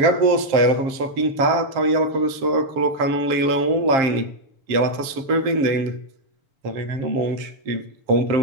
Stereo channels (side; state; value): left; late; 7.5 ms